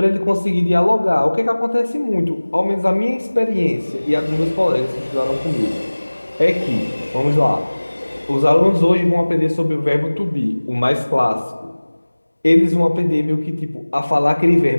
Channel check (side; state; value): both; inverted; correlation -1.00